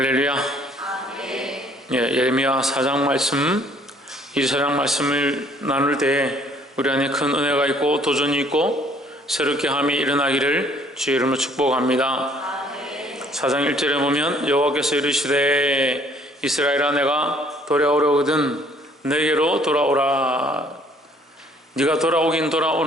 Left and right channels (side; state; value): both; normal; correlation 0.60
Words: 예, 예레미야 4장 말씀, 이 4장 말씀을 나눌 때 우리 안에 큰 은혜가 있고 도전이 있고 새롭게 함이 일어나기를 주의 이름으로 축복합니다. 4장 1절에 보면 여호와께서 이르시되 이스라엘아 내가 돌아오려거든 내게로 돌아오라. 네가 돌아오긴